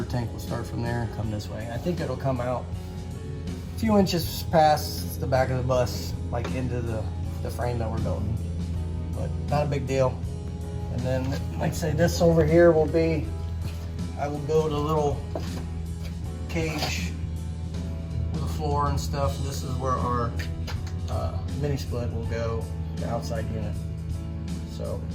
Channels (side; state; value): both; identical; correlation 1.00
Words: tank will start from there and come this way. I think it'll come out a few inches past the back of the bus, like into the frame that we're building. But not a big deal. And then, like I say, this over here will be, I will build a little cage with a floor and stuff. This is where our mini split will go, the outside unit. So,